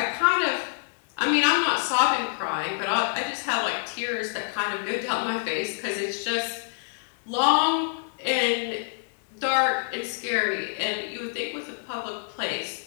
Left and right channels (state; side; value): silent; right; digital silence